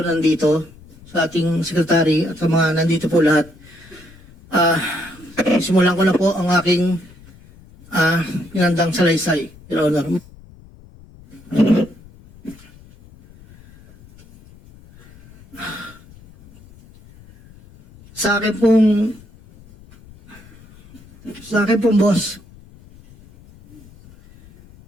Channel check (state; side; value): noise; left; rumble, 23 dB below the sound